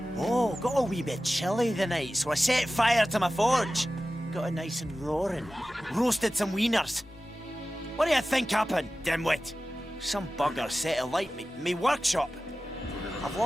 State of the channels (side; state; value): both; normal; correlation 0.95